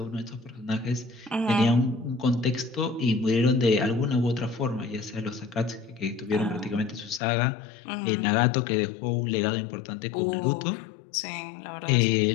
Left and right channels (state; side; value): drops out; right; at 7.2 s